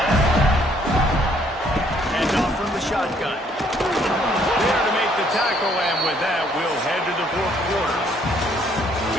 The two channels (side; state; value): both; normal; correlation 0.65